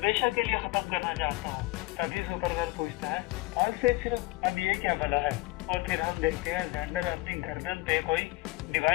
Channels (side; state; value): right; quieter; 20.5 dB